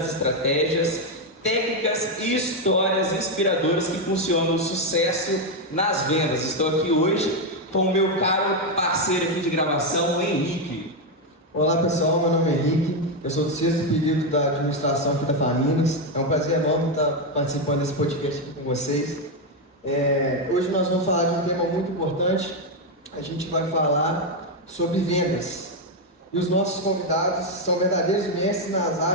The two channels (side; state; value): both; normal; correlation 0.05